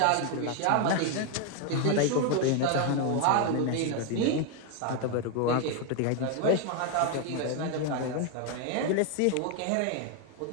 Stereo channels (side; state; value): both; different; correlation 0.01